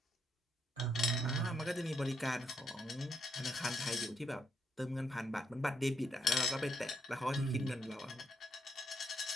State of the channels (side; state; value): both; normal; correlation 0.77